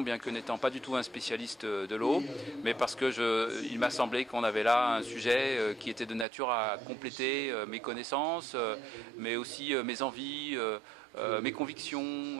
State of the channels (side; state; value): left; drops out; at 6.2 s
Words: bien que n'étant pas du tout un spécialiste de l'eau, mais parce que il m'a semblé qu'on avait là un sujet qui était de nature à compléter mes connaissances, mais aussi mes envies, mes convictions,